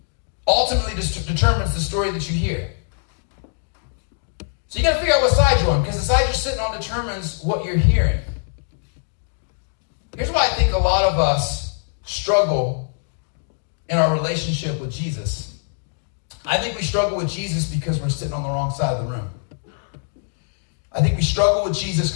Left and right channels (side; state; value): right; silent; digital silence